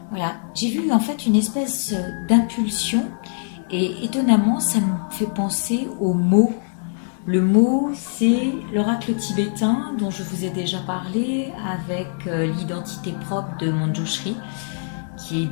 Voilà, j'ai vu en fait une espèce d'impulsion et étonnamment ça me fait penser au mot. Le mot, c'est l'oracle tibétain dont je vous ai déjà parlé avec l'identité propre de Manjushri, qui est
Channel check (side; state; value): right; silent; digital silence